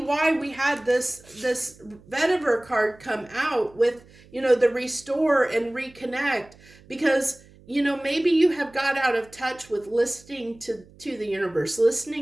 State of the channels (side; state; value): right; noise; hum, 25 dB below the sound